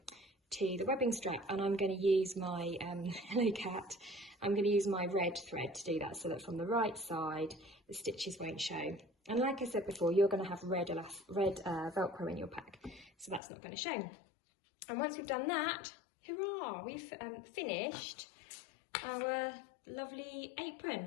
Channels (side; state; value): right; drops out; at 13.4 s